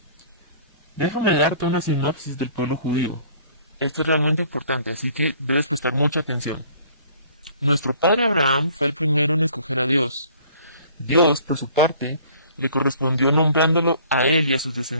Déjame darte una sinopsis del pueblo judío. Esto es realmente importante, así que debes prestar mucha atención. Nuestro padre Abraham fue el primero en escoger a Dios. Dios, por su parte, le correspondió nombrándolo a él y a sus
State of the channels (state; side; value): inverted; both; correlation -0.54